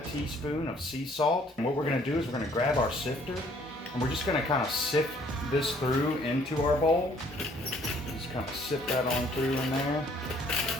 teaspoon of sea salt. And what we're gonna do is we're gonna grab our sifter and we're just gonna kind of sift this through into our bowl. Just kind of sift that on through in there.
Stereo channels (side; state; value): both; normal; correlation 0.61